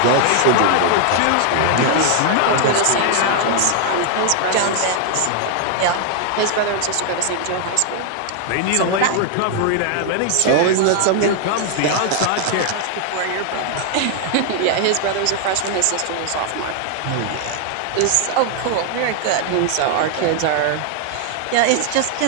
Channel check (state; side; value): different; both; correlation 0.00